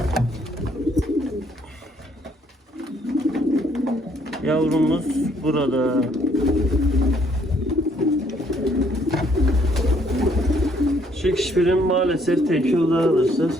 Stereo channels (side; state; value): both; normal; correlation 0.67